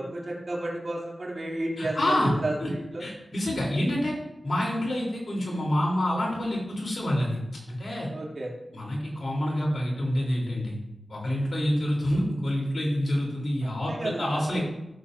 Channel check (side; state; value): both; normal; correlation 0.95